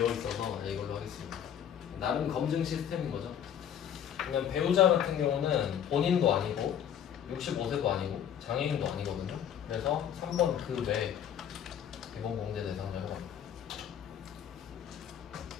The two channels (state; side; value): quieter; right; 9.3 dB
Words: 있어서 이걸로 하겠습니다. 나름 검증 시스템인 거죠. 그냥 배우자 같은 경우는 본인도 아니고 65세도 아니고 장애인도 아니거든요. 그래서 3번 그 외 기본공제 대상자가 합니다.